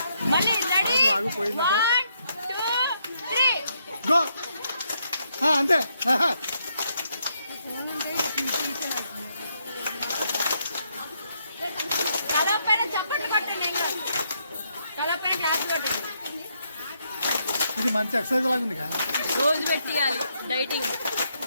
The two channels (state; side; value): inverted; both; correlation -0.76